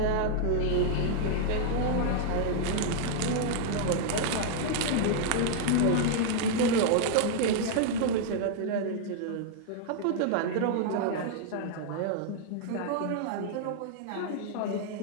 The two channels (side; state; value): both; different; correlation -0.01